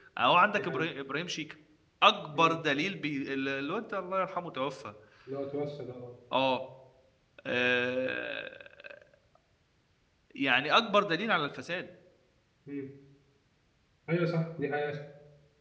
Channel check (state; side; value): identical; both; correlation 1.00